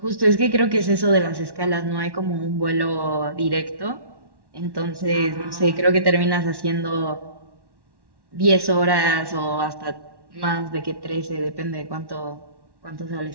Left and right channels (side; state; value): left; late; 1.1 ms